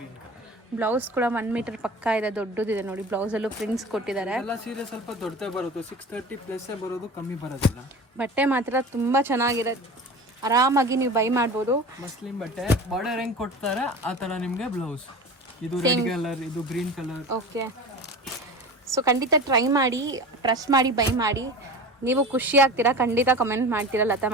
ಬ್ಲೌಸ್ ಕೂಡ 1 ಮೀಟರ್ ಪಕ್ಕ ಇದೆ, ದೊಡ್ಡದಿದೆ ನೋಡಿ. ಬ್ಲೌಸಲ್ಲೂ ಪ್ರಿಂಟ್ಸ್ ಕೊಟ್ಟಿದ್ದಾರೆ. ಎಲ್ಲ ಸೀರೆ ಸ್ವಲ್ಪ ದೊಡ್ಡದೇ ಬರುತ್ತೆ, 630+ ಬರೋದು, ಕಮ್ಮಿ ಬರೋದಿಲ್ಲ. ಬಟ್ಟೆ ಮಾತ್ರ ತುಂಬ ಚೆನ್ನಾಗಿದೆ, ಆರಾಮಾಗಿ ನೀವು ಬೈ ಮಾಡ್ಬೋದು. ಮಸ್ಲಿನ್ ಬಟ್ಟೆ ಬಾರ್ಡರ್ ಹೆಂಗ್ ಕೊಡ್ತಾರೆ ಆ ಥರ ನಿಮಗೆ ಬ್ಲೌಸ್. ಇದು ರೆಡ್ ಕಲರ್, ಇದು ಗ್ರೀನ್ ಕಲರ್. ಓಕೆ, ಸೊ ಖಂಡಿತ ಟ್ರೈ ಮಾಡಿ, ಟ್ರಸ್ಟ್ ಮಾಡಿ ಬೈ ಮಾಡಿ. ನೀವು ಖುಷಿ ಆಗ್ತೀರಾ, ಖಂಡಿತ ಕಮೆಂಟ್ ಮಾಡ್ತೀರಾ ಲತಾ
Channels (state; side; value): normal; both; correlation 0.34